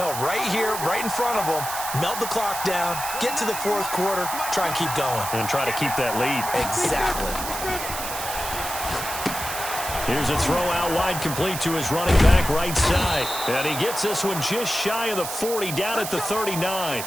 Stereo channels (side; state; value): right; noise; hiss, 6 dB below the sound